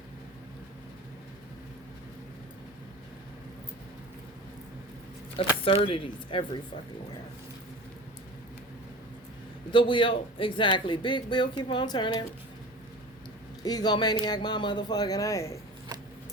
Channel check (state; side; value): normal; both; correlation 0.36